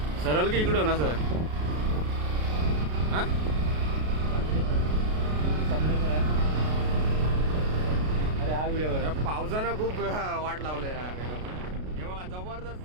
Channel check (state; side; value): late; left; 33 ms